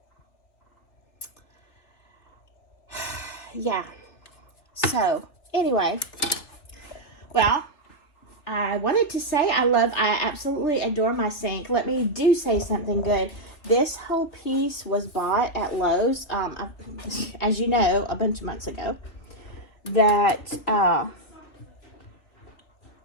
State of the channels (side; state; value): right; late; 3.1 ms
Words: Yeah. So, anyway. Well, I wanted to say I absolutely adore my sink. Let me do say something good. This whole piece was bought at Lowe's, as you know, a bunch of months ago. That